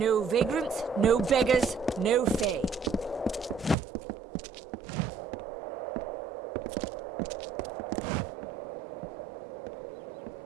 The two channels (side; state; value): left; drops out; at 3.8 s